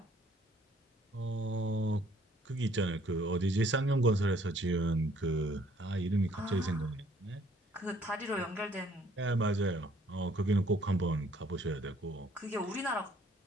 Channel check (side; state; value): both; normal; correlation 0.62